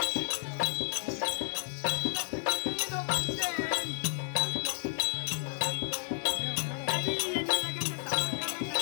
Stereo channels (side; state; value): right; silent; digital silence